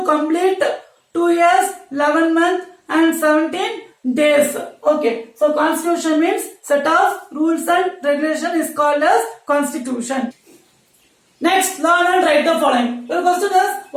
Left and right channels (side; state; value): both; identical; correlation 1.00